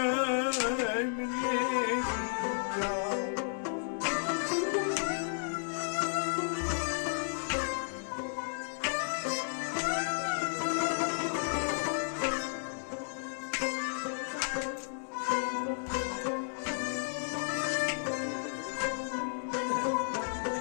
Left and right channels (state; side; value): silent; right; 56 dB below the other